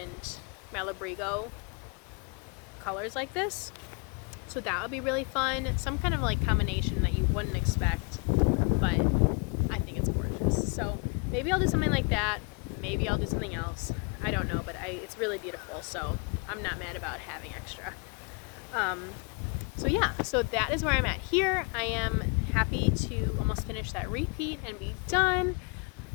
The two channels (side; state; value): right; quieter; 33.6 dB